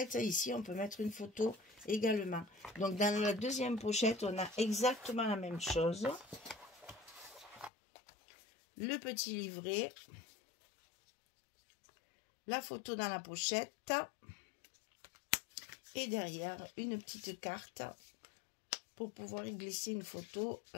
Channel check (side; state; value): right; drops out; at 7.7 s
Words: ici, on peut mettre une photo également. Donc, dans la deuxième pochette, on a exactement la même chose. Le petit livret. La photo dans la pochette. Et derrière, une petite carte pour pouvoir y glisser une photo,